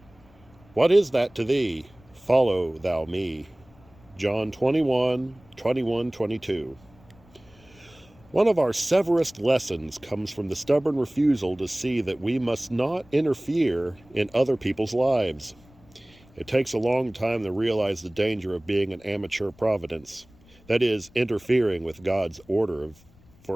What is that to thee? Follow thou me. John 21:21-22. One of our severest lessons comes from the stubborn refusal to see that we must not interfere in other people's lives. It takes a long time to realize the danger of being an amateur providence, that is, interfering with God's order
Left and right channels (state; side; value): noise; left; rumble, 27 dB below the sound